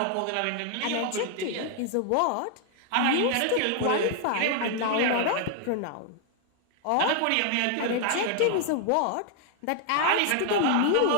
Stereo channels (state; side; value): different; both; correlation 0.00